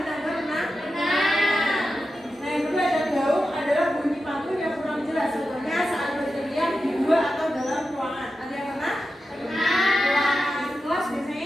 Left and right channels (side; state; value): both; normal; correlation 0.91